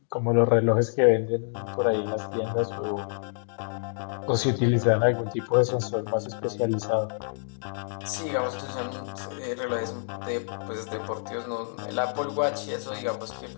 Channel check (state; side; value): silent; right; digital silence